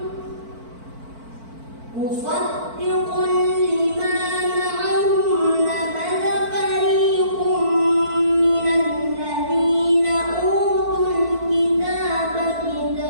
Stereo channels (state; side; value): late; left; 4.5 ms